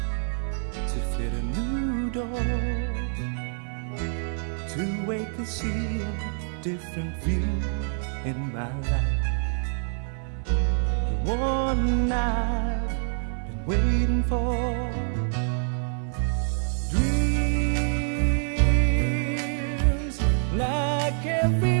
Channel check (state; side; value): silent; left; 61 dB below the other